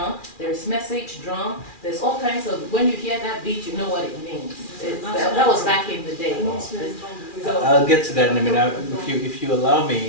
there is message drum, there's all kinds of, when you hear that beat, you know what it means. That was back in the day. So, I'll get to that in a minute. If you allow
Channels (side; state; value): right; late; 2.4 ms